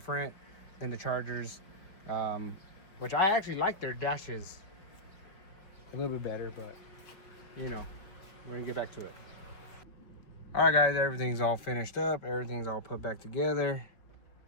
than the Chargers. Which I actually like their dashes a little bit better, but you know, we're gonna get back to it. All right, guys, everything's all finished up. Everything's all put back together.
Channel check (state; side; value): late; right; 4.7 ms